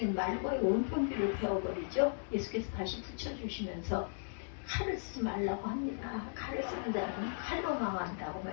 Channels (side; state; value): right; silent; digital silence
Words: 말과의 온통 귀를 베어버리죠. 예수께서 다시 붙여주시면서 칼을 쓰지 말라고 합니다. 칼을 쓰는 자는 칼로 망한다고